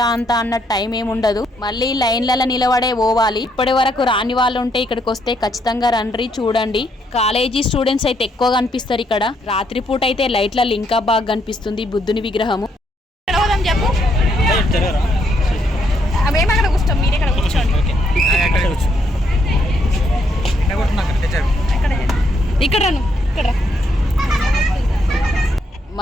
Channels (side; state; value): both; normal; correlation 0.74